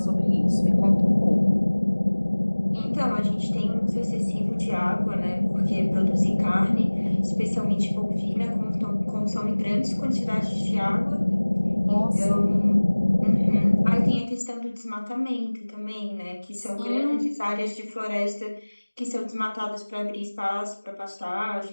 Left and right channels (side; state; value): both; inverted; correlation -1.00